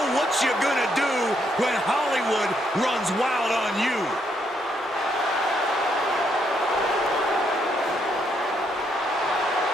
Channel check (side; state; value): both; normal; correlation 0.75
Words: what you gonna do when Hollywood runs wild on you?